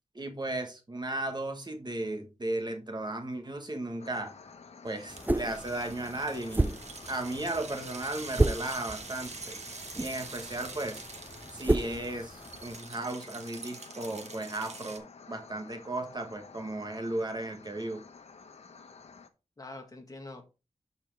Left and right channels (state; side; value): normal; both; correlation 0.70